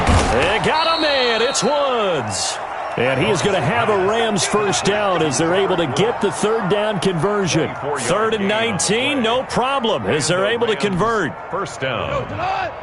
They got a man. It's Woods. And he is going to have a Rams first down as they're able to get the third down conversion. 3rd and 19, no problem, as they're able to convert. First down.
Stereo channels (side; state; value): both; identical; correlation 1.00